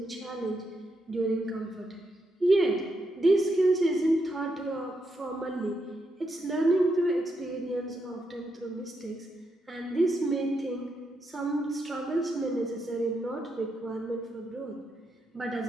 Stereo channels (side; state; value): both; normal; correlation 0.81